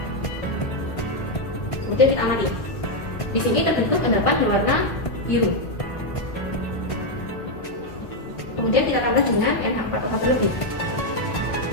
Kemudian kita amati. Di sini terbentuk endapan berwarna biru. Kemudian kita tambah dengan NH4OH terlebih.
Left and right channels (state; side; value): late; right; 1.5 ms